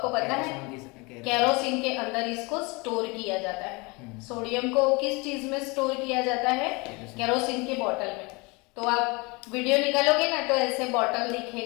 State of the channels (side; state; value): right; quieter; 27.3 dB